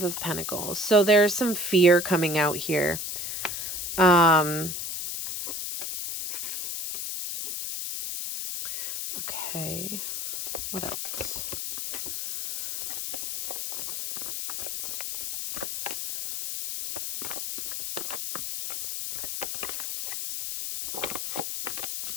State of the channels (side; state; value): left; noise; hiss, 4 dB below the sound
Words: of Pentacles. So there's some fear coming out here. Okay. What else?